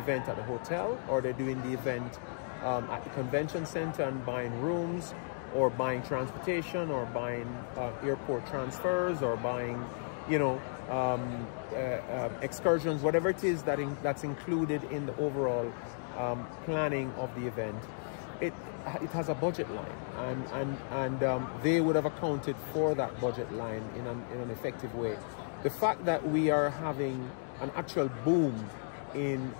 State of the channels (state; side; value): silent; right; digital silence